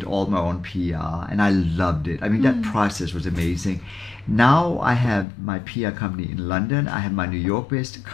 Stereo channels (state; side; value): drops out; right; at 5.2 s